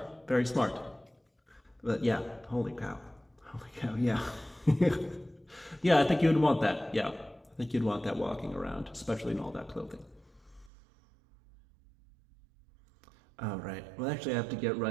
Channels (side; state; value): left; drops out; at 10.7 s